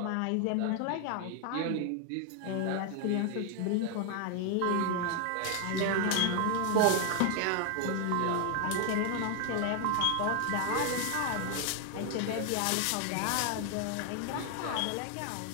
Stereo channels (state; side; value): different; both; correlation 0.00